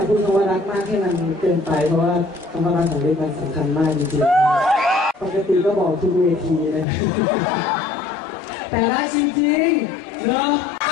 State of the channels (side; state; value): right; drops out; at 6.9 s